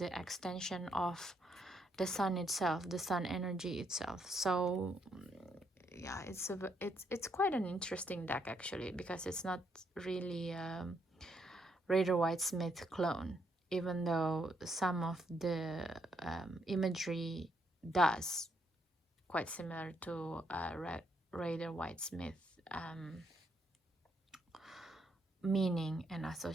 extension of the sun itself, the sun energy itself. So yeah, it's quite an interesting deck actually, because it's not really Rider-Waite-Smith clone, even though some of the imagery does quite similar to Rider-Waite-Smith meaning and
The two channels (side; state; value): both; normal; correlation 0.75